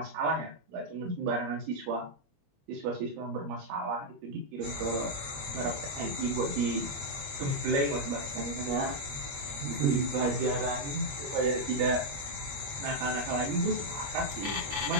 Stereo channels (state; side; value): late; left; 21 ms